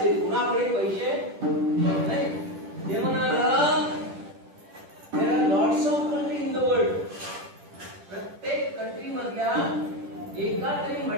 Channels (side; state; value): left; late; 10 ms